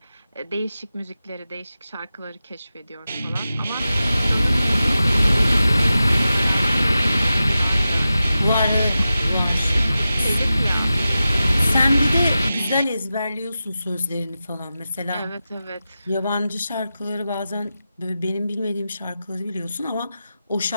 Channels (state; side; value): inverted; both; correlation -0.92